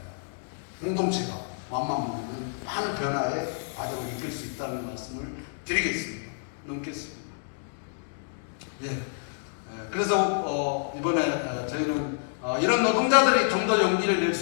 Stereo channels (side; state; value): right; silent; digital silence